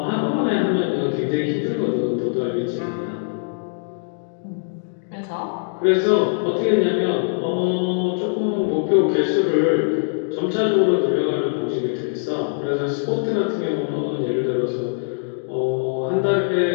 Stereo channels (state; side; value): silent; right; digital silence